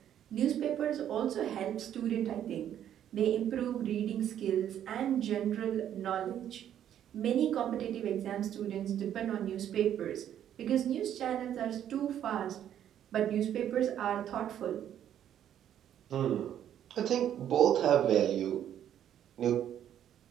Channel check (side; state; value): left; quieter; 10.4 dB